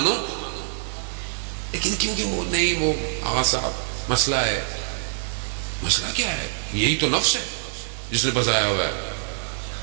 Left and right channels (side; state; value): left; silent; 60 dB below the other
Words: لیکن کیونکہ وہ نہیں، وہ آغا صاحب مسئلہ ہے. مسئلہ کیا ہے؟ یہی تو نفس ہے جس نے بسایا ہوا ہے.